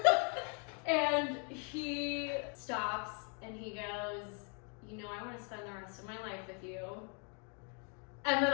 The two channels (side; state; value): right; quieter; 37.3 dB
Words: And he stops and he goes, you know, I want to spend the rest of my life with you. And then